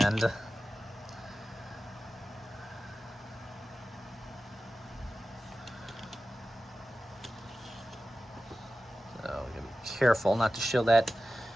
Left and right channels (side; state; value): both; normal; correlation 0.95